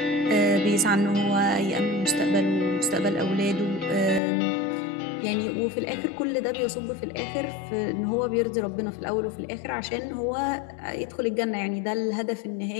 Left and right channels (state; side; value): drops out; right; at 4.2 s